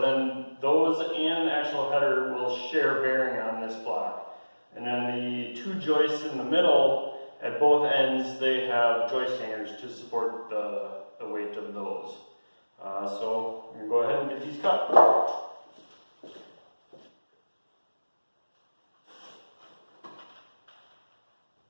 those and the actual header will share bearing on this block. And then the 2 joists in the middle, at both ends, they have joist hangers to support the weight of those. So I'm going to go ahead and get these cut.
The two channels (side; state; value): both; inverted; correlation -1.00